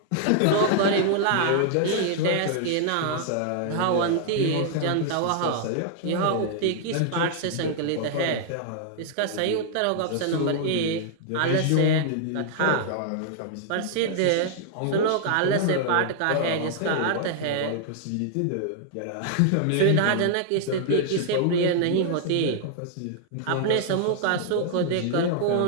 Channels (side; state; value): both; different; correlation -0.01